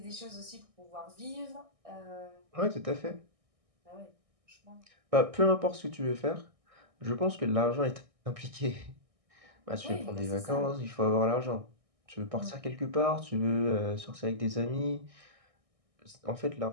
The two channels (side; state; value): left; late; 1.6 ms